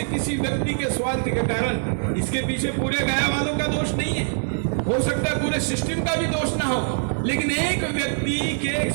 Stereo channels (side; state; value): left; silent; digital silence